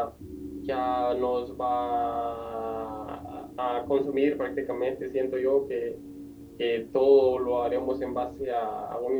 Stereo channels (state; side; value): identical; both; correlation 1.00